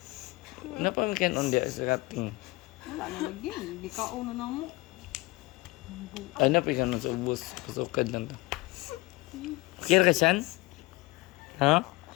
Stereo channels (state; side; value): quieter; right; 21.5 dB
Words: Napamikan on diya sa kating. Wala na lagi. Di kaon na mo. Ay, napikan nun sa ubos. Pasukad lang ta. Okay na ka siyan? Ha?